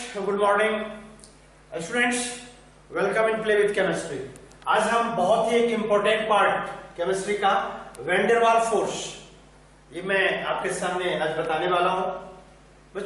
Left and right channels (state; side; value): identical; both; correlation 1.00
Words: good morning students, welcome in play with chemistry. आज हम बहुत ही एक इंपॉर्टेंट पार्ट केमिस्ट्री का वैन वाल फोर्स, ये मैं आपके सामने आज बताने वाला हूं।